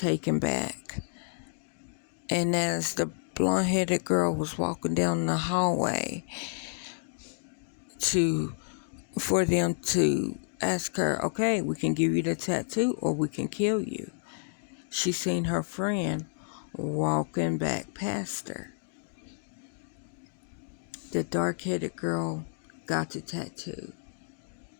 back. And as the blonde-headed girl was walking down the hallway for them to ask her, okay, we can give you the tattoo or we can kill you, she seen her friend walking back past her. The dark-headed girl got the tattoo.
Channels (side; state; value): right; silent; digital silence